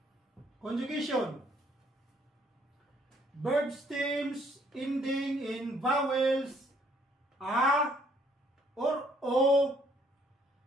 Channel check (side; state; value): both; normal; correlation 0.65